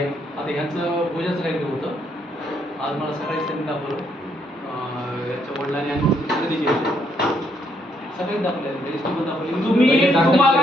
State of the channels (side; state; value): both; normal; correlation 0.73